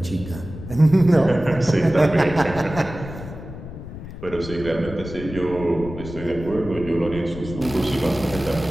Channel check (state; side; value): noise; left; rumble, 12 dB below the sound